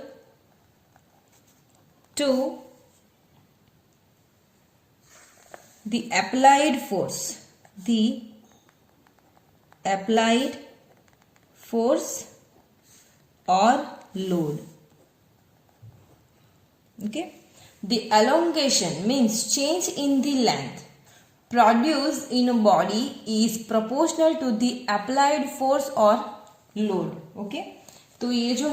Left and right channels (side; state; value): both; identical; correlation 1.00